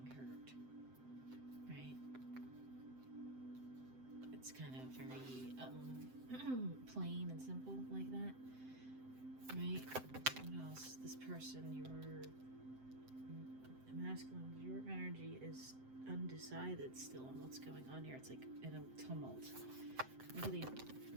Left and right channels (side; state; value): left; late; 7.8 ms